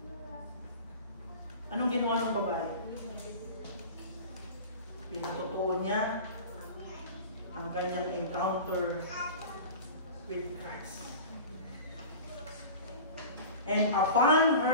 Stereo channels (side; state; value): both; inverted; correlation -0.36